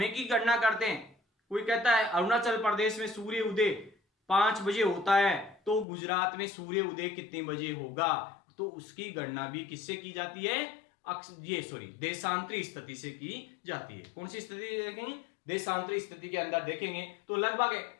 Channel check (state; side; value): drops out; right; at 5.9 s